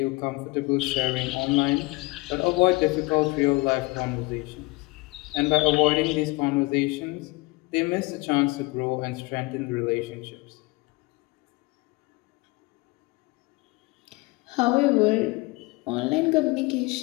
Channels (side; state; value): right; quieter; 24.0 dB